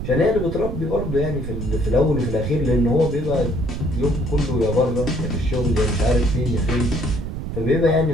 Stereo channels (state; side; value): noise; right; rumble, 6 dB below the sound